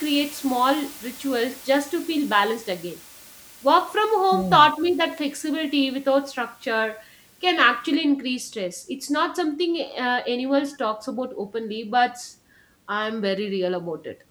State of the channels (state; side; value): identical; both; correlation 1.00